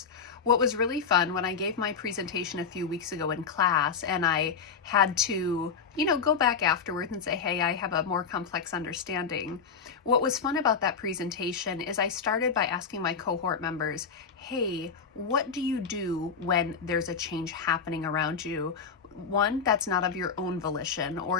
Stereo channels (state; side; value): quieter; right; 5.9 dB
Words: What was really fun when I gave my presentation a few weeks ago in class and I had to, go back afterwards and say, hey, I have a more complex understanding. What was fun about that presentation is I started by asking my cohort members, hey, what do you do when there's a change happening around you? One, that's not of your own volition,